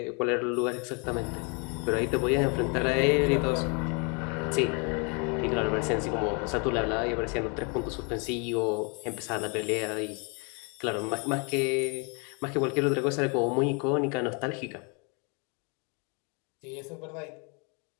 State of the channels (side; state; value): right; quieter; 34.1 dB